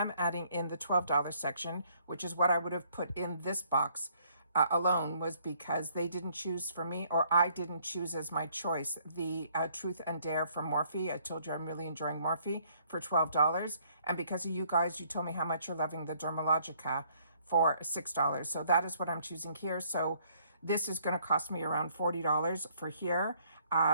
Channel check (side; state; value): both; inverted; correlation -0.65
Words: adding in the $12 section, which is what I would have put in this box alone, was because they didn't choose for me, or I didn't choose as my choice, the Truth and Dare from Morphe. I told you I'm really enjoying Morphe for $12. And because of you guys, you told me how much you're loving the Dermalogica for $6. So that is what I'm choosing here. So this is going to cost me around $40 for here.